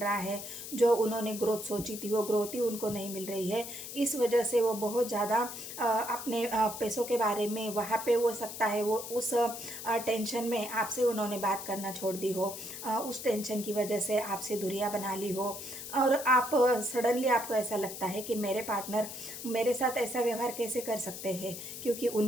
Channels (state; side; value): noise; left; hiss, 9 dB below the sound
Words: है, जो उन्होंने ग्रोथ सोची थी वो ग्रोथ ही उनको नहीं मिल रही है। इस वजह से वो बहुत ज़्यादा अपने पैसों के बारे में वहाँ पे हो सकता है वो उस टेंशन में आपसे उन्होंने बात करना छोड़ दी हो, उस टेंशन की वजह से आपसे दूरियां बना ली हो, और आप सडनली आपको ऐसा लगता है कि मेरे पार्टनर मेरे साथ ऐसा व्यवहार कैसे कर सकते हैं, क्योंकि